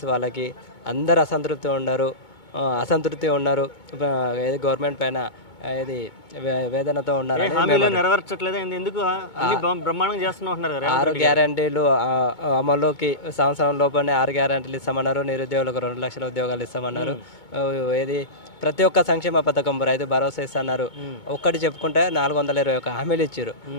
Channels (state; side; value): late; right; 2.2 ms